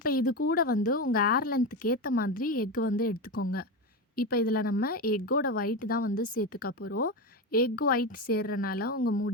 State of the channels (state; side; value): normal; both; correlation 0.17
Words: இது கூட வந்து உங்கள் ஏர் லென்த்துக்கு ஏற்ற மாதிரி எக் வந்து எடுத்துக்கோங்க. இப்போ இதில் நம்ம எக்கோட ஒயிட் தான் வந்து சேர்த்துக்க போகிறோம். எக் ஒயிட் சேர்றனால உங்கள்